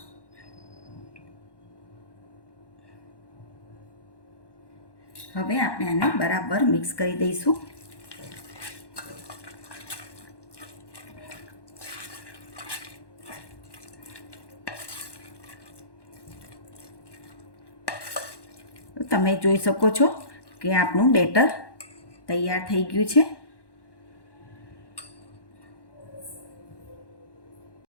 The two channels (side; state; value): right; late; 1.1 ms